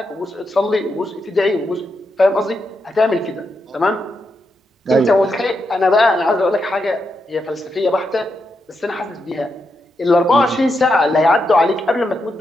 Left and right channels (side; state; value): both; normal; correlation 0.84